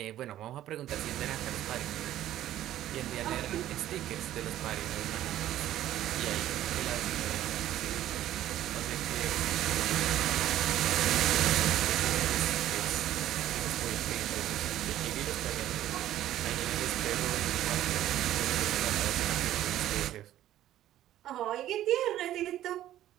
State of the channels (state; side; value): quieter; left; 12.9 dB